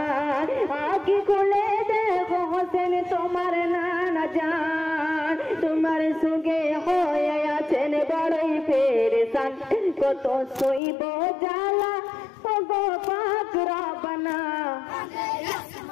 আগে খুলে দেখো হোসেন তোমার নানা জান, তোমার সঙ্গে হয়ে আছেন বড়ই পেরেশান, কত সইব জ্বালা ও গো পাক রব্বানা। কাঁদে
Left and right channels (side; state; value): right; drops out; at 10.8 s